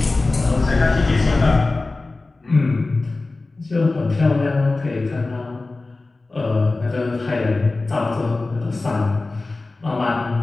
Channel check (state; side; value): quieter; right; 3.3 dB